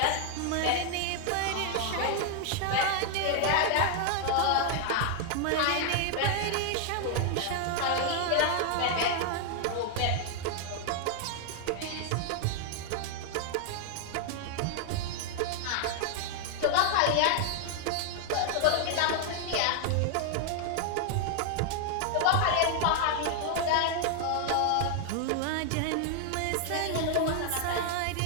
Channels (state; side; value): different; both; correlation 0.00